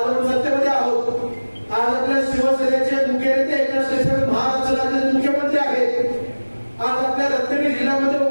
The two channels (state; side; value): inverted; both; correlation -1.00